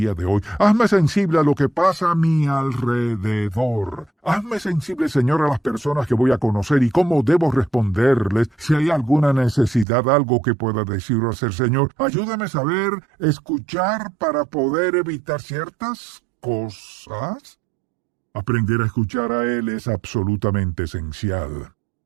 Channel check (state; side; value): drops out; left; at 9.9 s